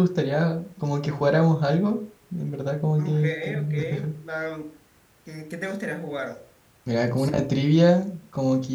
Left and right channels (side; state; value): both; identical; correlation 1.00